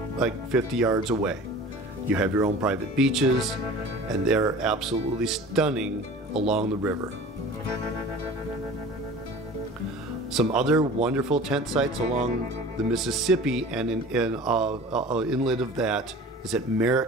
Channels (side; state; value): both; normal; correlation 0.41